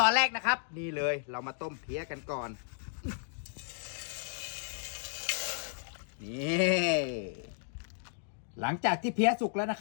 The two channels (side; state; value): right; silent; 55 dB below the other